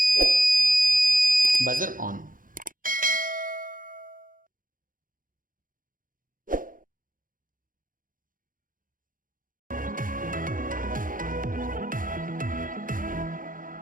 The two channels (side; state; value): left; late; 0.40 ms